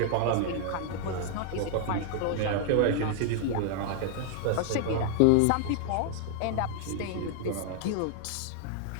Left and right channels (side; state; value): both; different; correlation 0.00